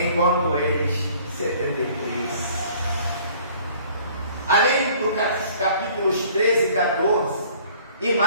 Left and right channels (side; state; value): both; inverted; correlation -0.54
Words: eles 73. Além dos capítulos 13 e 14, e